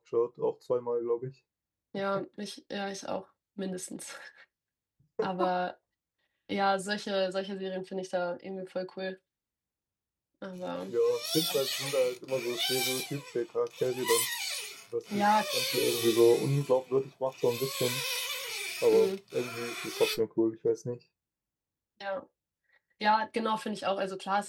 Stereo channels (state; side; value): identical; both; correlation 1.00